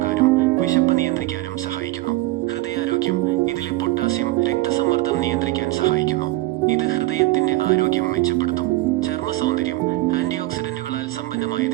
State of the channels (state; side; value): quieter; left; 18.8 dB